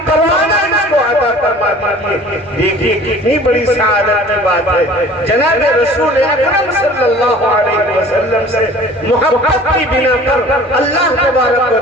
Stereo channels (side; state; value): both; normal; correlation 0.47